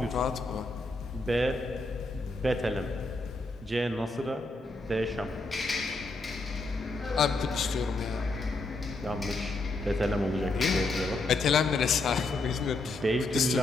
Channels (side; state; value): right; quieter; 3.1 dB